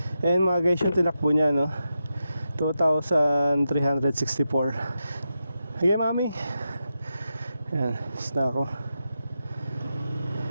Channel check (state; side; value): inverted; both; correlation -0.88